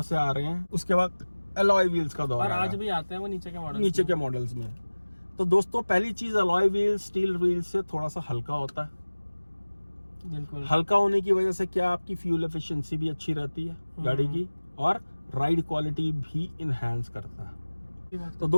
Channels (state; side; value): inverted; both; correlation -1.00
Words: से आ रहे हैं, उसके बाद अलॉय व्हील्स का दौर और आज भी आते हैं वो नीचे के मॉडल्स में। तो दोस्तों पहली चीज, अलॉय व्हील स्टील व्हील से थोड़ा सा हल्का होता है। बिल्कुल। हल्का होने की वजह से क्या आपकी फ्यूल एफिशिएंसी भी अच्छी रहती है गाड़ी की, और राइड क्वालिटी भी इनहेंस करता है। तो